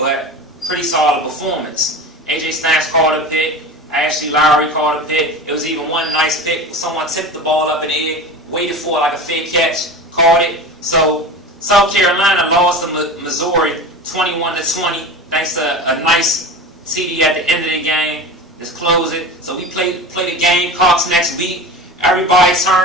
pretty solid performance. AJ Stamps caught a pick. Ashley Lowry caught a pick. It was even one nice pick. Someone tipped the ball up in the air, waited for it like a fake catch, caught it. So South Carolina lost to Missouri 21-20, thanks to a nice TD at the end of the game. Just close it. So we play the Gamecocks next week. Everybody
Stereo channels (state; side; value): normal; both; correlation 0.31